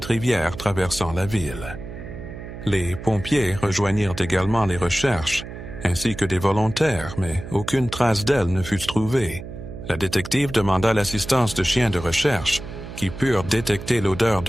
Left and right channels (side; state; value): right; noise; hum, 11 dB below the sound